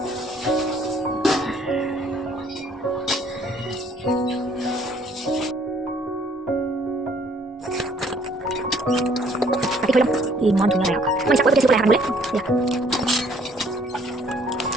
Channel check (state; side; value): normal; both; correlation 0.62